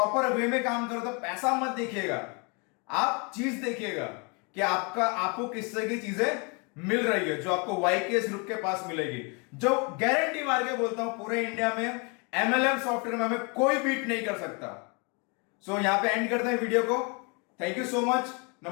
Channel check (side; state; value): right; quieter; 32.7 dB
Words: वे में काम करे, तो पैसा मत देखिएगा, आप चीज देखिएगा कि आपको किस तरह की चीजें मिल रही है जो आपको YKS ग्रुप के पास मिलेगी। जो गारंटी मार के बोलता हूं पूरे इंडिया में MLM सॉफ्टवेयर में हमें कोई बीट नहीं कर सकता। सो यहां पे एंड करते हैं वीडियो को। थैंक यू सो मच,